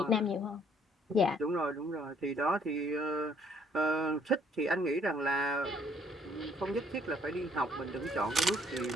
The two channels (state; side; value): normal; both; correlation 0.63